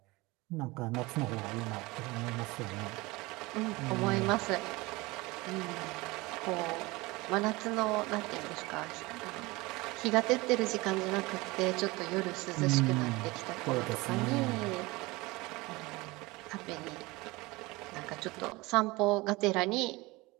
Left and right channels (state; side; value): quieter; left; 22.5 dB